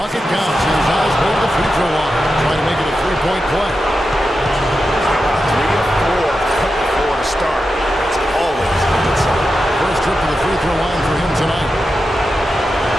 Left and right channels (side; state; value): both; normal; correlation 0.90